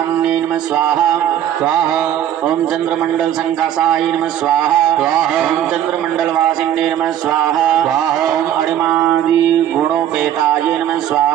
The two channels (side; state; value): left; quieter; 11.0 dB